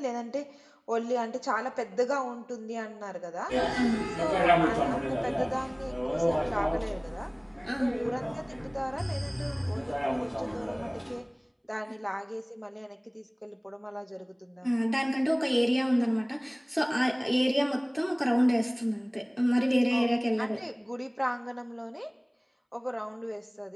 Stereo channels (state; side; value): identical; both; correlation 1.00